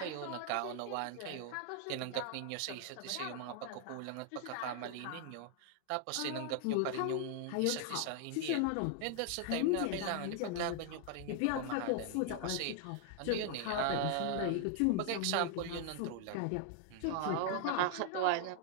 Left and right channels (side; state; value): both; different; correlation 0.00